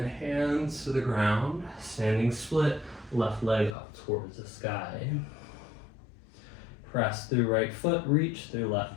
hands to the ground, standing split, left leg up towards the sky. Press through right foot, reach through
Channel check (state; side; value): drops out; right; at 3.8 s